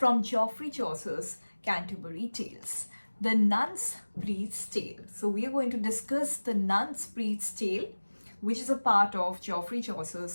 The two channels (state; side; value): inverted; both; correlation -1.00